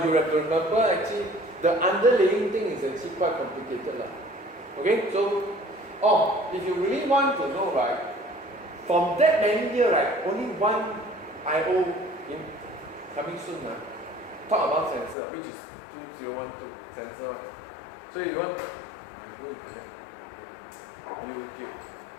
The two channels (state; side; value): drops out; right; at 15.2 s